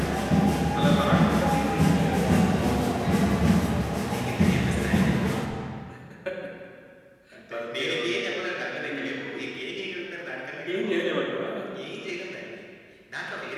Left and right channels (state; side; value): identical; both; correlation 1.00